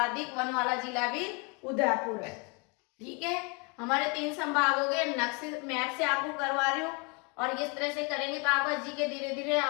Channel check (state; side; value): quieter; right; 32.2 dB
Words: वन वाला जिला भी उदयपुर है। ठीक है, हमारे 3 संभाग हो गए। नक्शे मैप से आपको करवा रही हूँ, और इस तरह से करेंगे तो आपका जीके धीरे धीरे